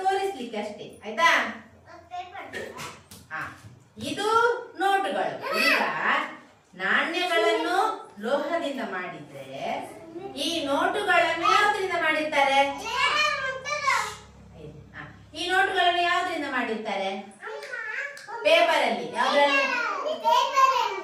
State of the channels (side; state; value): both; identical; correlation 1.00